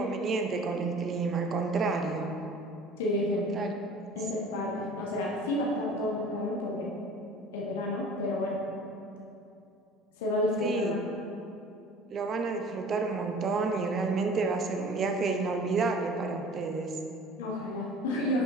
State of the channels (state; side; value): normal; both; correlation 0.45